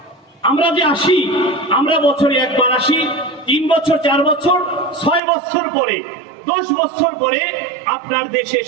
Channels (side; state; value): left; drops out; at 5.2 s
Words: আমরা যে আসি, আমরা বছরে একবার আসি, 3 বছর 4 বছর 6 বছর পরে 10 বছর পরে আপনার দেশে